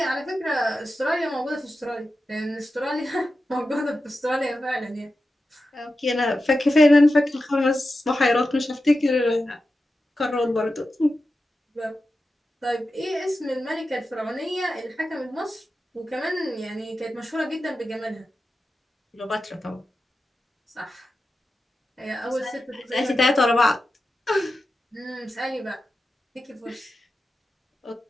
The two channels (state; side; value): normal; both; correlation 0.91